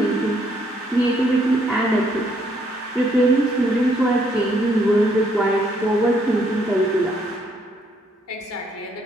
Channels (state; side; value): normal; both; correlation 0.70